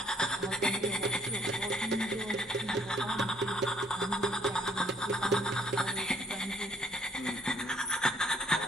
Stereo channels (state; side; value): normal; both; correlation 0.63